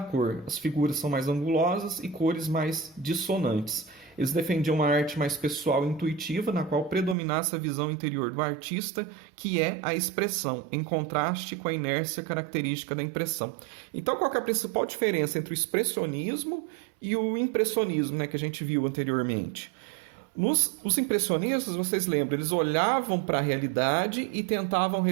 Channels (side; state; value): left; drops out; at 7.2 s